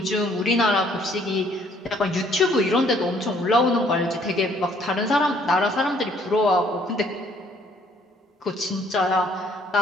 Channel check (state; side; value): normal; both; correlation 0.62